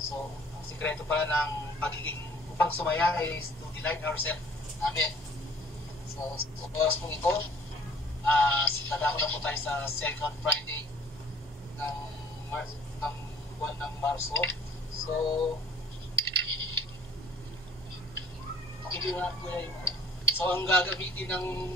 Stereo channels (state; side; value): normal; both; correlation 0.54